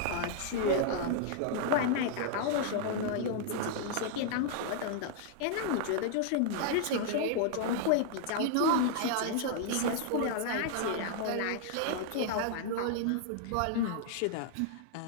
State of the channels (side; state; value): both; different; correlation -0.01